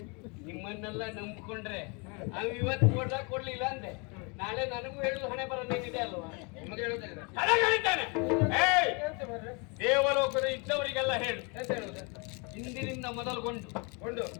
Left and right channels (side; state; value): right; quieter; 32.1 dB